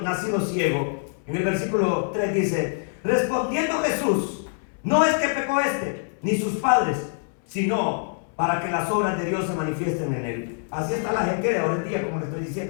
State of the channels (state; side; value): silent; right; 62 dB below the other